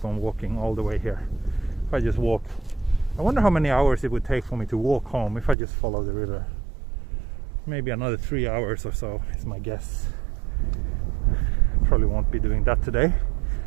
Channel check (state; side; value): drops out; left; at 5.6 s